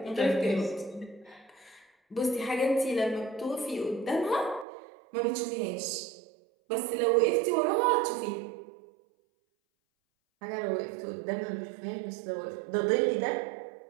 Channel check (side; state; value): left; drops out; at 4.7 s